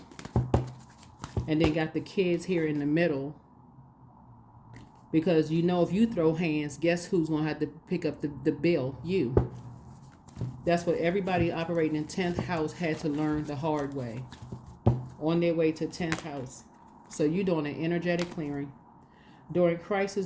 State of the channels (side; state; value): both; identical; correlation 1.00